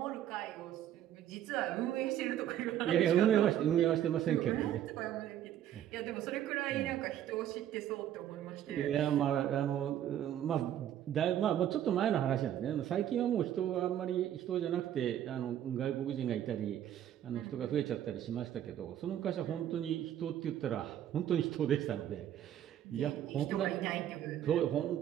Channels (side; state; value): left; quieter; 11.1 dB